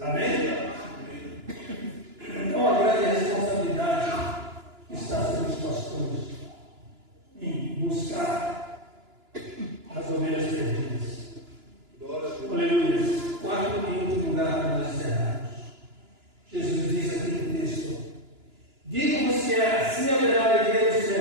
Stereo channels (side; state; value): left; late; 2.9 ms